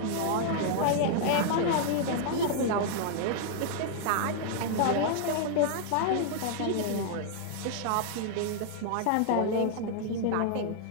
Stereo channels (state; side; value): different; both; correlation -0.01